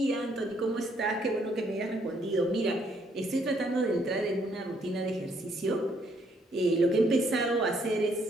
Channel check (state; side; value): normal; both; correlation 0.69